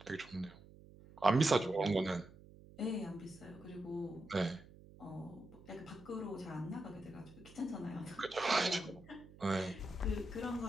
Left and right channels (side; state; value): right; noise; hum, 20 dB below the sound